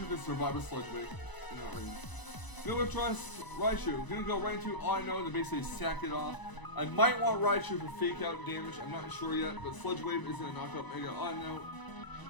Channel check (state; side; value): late; right; 1.0 ms